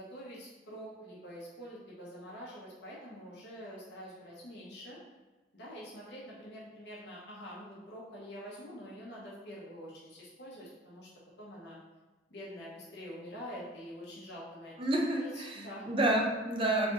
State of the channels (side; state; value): both; normal; correlation 0.42